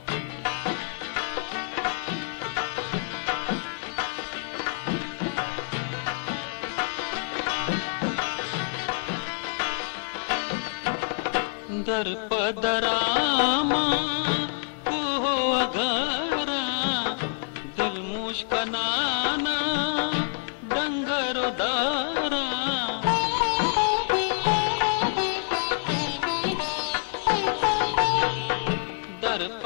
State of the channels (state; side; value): silent; right; 60 dB below the other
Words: दर पदरामा को अगारा दिल मुश्कनाना डंगरो दारा दर